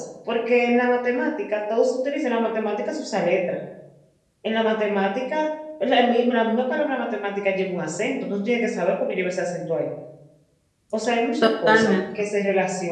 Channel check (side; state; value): both; identical; correlation 1.00